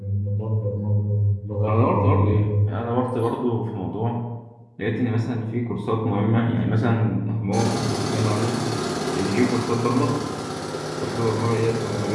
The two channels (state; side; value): identical; both; correlation 1.00